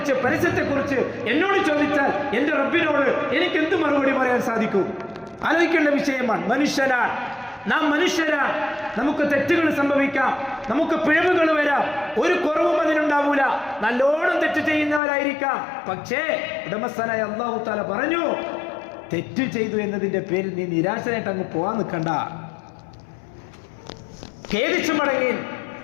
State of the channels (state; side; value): drops out; right; at 15.0 s